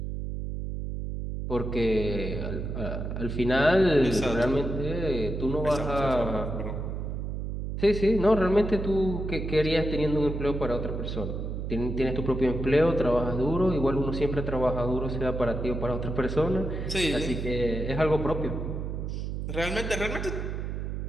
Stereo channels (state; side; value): noise; right; hum, 4 dB below the sound